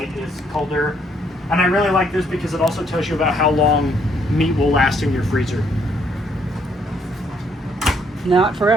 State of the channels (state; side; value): normal; both; correlation 0.69